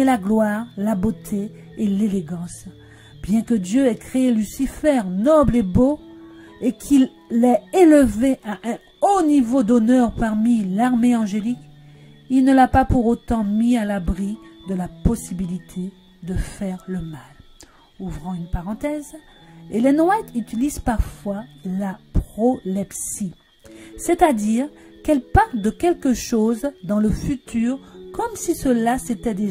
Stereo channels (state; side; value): identical; both; correlation 1.00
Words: la gloire, la beauté et l'élégance. Bien que Dieu ait créé Lucifer noble et beau, et qu'il l'ait élevé à un haut niveau d'honneur parmi l'armée angélique, il ne l'a pas pour autant mis à l'abri de la possibilité de faire le mal. Ouvrons une parenthèse, Ellen White utilise parfois la prolepsie, c'est-à-dire qu'elle parle de quelque chose dans le futur comme si cela s'était